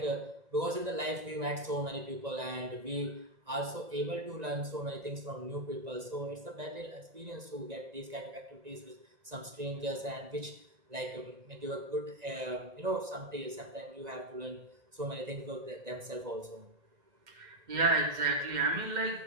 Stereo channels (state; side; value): late; left; 1.9 ms